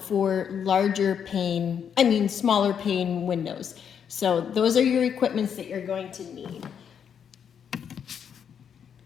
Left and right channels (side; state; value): right; quieter; 7.9 dB